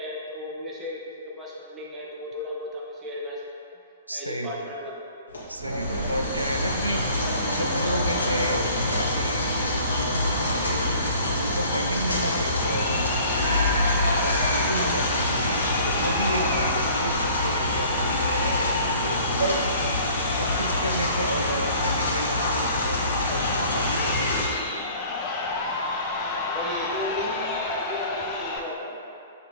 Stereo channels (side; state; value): both; inverted; correlation -0.50